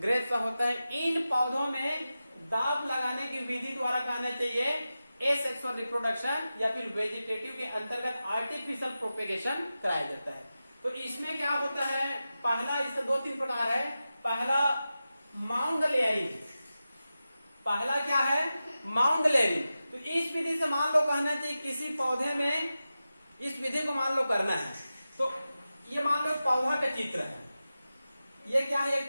होता है, इन पौधों में दाब लगाने की विधि द्वारा कहना चाहिए एसेक्सुअल रिप्रोडक्शन या फिर वेजिटेटिव के अंतर्गत आर्टिफिशियल प्रोपेगेशन कराया जाता है। तो इसमें क्या होता है, पहला इसका 2-3 प्रकार है। पहला माउंड लेयरिंग, पहला क्या है माउंड लेयरिंग। तो इस विधि से मान लो कहना चाहिए किसी पौधे में इस विधि को मान लो करना है। तो ये मान लो पौधा का चित्र है, ये क्या है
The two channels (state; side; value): inverted; both; correlation -0.93